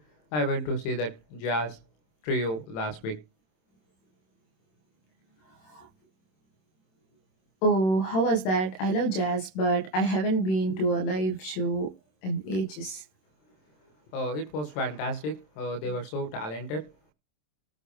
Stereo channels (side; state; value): right; late; 27 ms